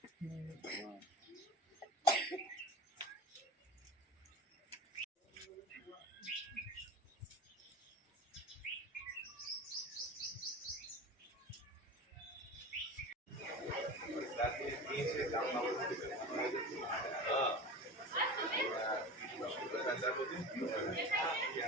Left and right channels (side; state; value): both; normal; correlation 0.31